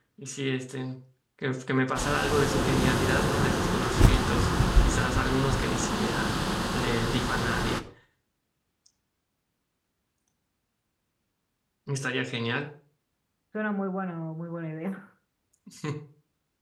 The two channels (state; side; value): identical; both; correlation 1.00